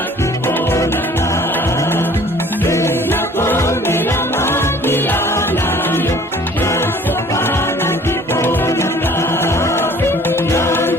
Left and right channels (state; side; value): normal; both; correlation 0.52